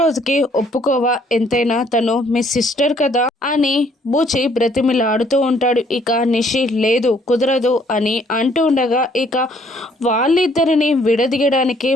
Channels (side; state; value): both; normal; correlation 0.63